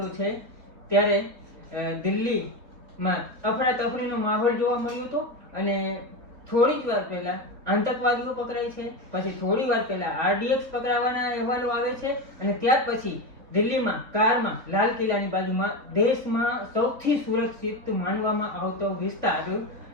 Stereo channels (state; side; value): late; left; 3.4 ms